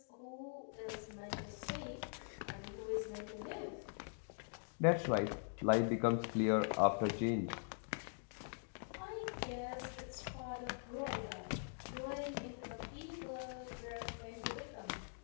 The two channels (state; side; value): silent; right; digital silence